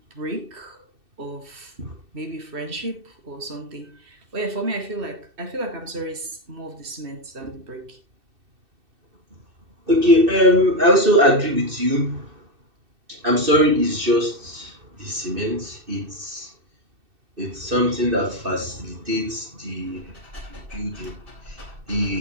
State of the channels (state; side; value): late; left; 2.6 ms